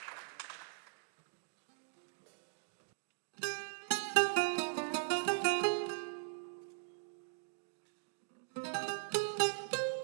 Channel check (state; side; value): silent; left; digital silence